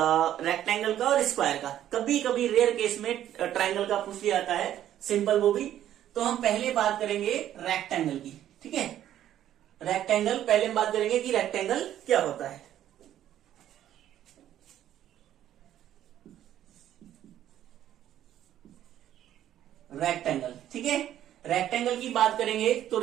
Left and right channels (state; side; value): quieter; left; 11.6 dB